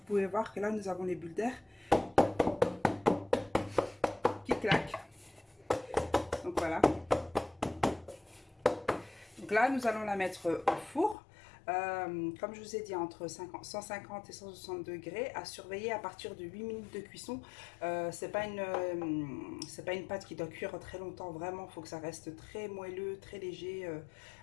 pouvez voir que là nous avons les bulles d'air qui claquent. Donc voilà. Donc là nous allons la mettre au four. Comme je vous ai dit, entre 150 et 160 degrés, à surveiller à partir de 8 minutes de cuisson. C'est pas une pâte qui doit cuire très longtemps, vraiment. Il faut que ça reste très moelleux, très léger,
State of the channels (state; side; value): drops out; right; at 11.2 s